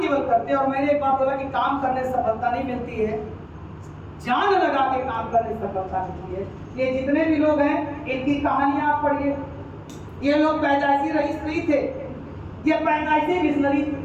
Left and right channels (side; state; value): both; identical; correlation 1.00